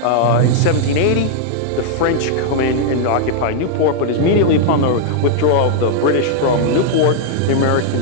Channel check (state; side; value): different; both; correlation -0.01